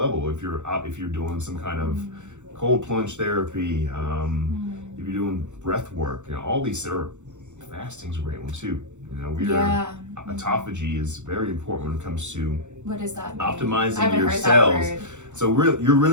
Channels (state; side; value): late; left; 0.84 ms